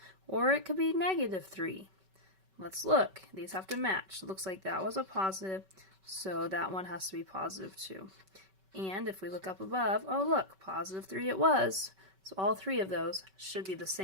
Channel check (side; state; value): left; late; 5.3 ms